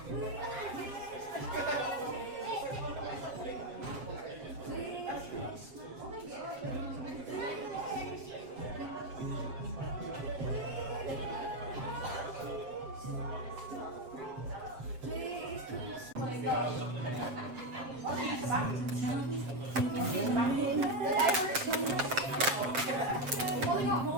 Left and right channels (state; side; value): late; left; 7.6 ms